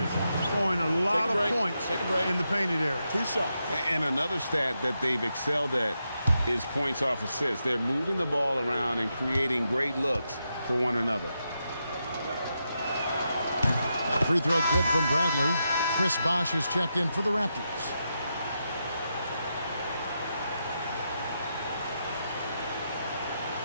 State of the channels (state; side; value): inverted; both; correlation -0.85